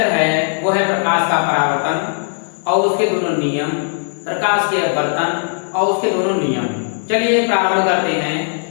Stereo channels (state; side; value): silent; right; digital silence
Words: है वो है प्रकाश का परावर्तन और उसके दोनों नियम, प्रकाश के अपवर्तन और उसके दोनों नियम। चलिए प्रारंभ करते हैं।